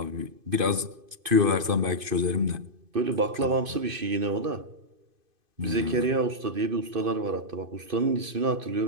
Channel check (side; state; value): left; late; 2.5 ms